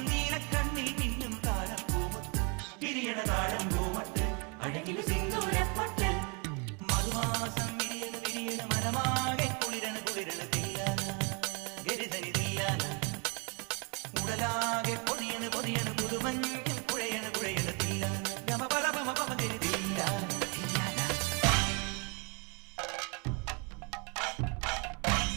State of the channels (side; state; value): left; quieter; 33.3 dB